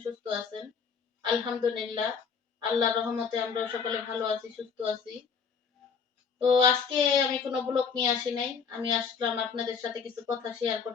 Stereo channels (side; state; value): right; quieter; 6.1 dB